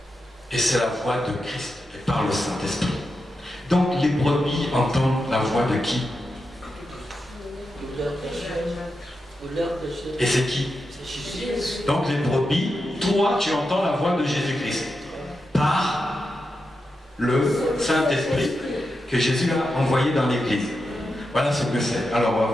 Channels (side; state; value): both; normal; correlation 0.88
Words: Et c'est la voix de Christ, et par le Saint-Esprit. Donc les brebis entendent la voix de qui? Et c'est qui? Donc les brebis, toi tu entends la voix de Jésus-Christ. par le Saint-Esprit que Jésus a envoyé dans l'Église. Voilà ce que c'est. Alors on va